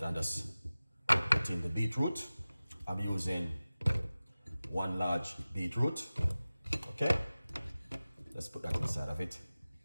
and just put in the beetroot. I'm using one large beetroot. Okay, let's put that inside of it,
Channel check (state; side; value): inverted; both; correlation -0.97